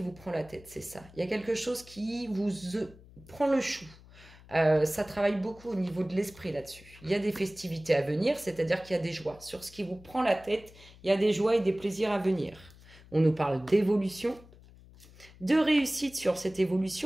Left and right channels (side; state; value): left; noise; hum, 22 dB below the sound